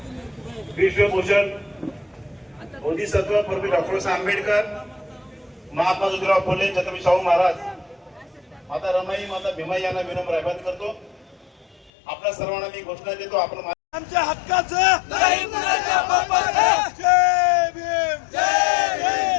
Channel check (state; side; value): drops out; right; at 11.9 s